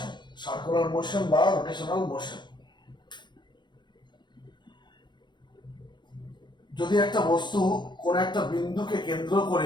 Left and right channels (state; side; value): late; right; 0.22 ms